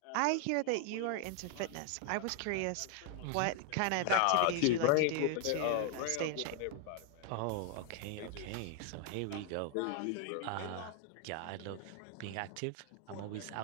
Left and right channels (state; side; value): different; both; correlation 0.00